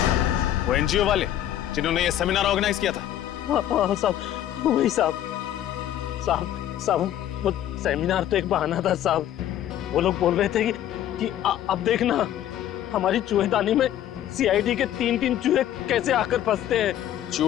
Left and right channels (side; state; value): right; quieter; 11.8 dB